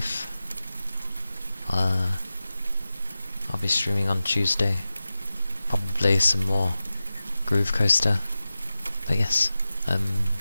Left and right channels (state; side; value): inverted; both; correlation -0.94